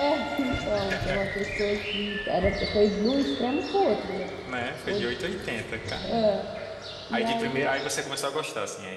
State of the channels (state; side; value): identical; both; correlation 1.00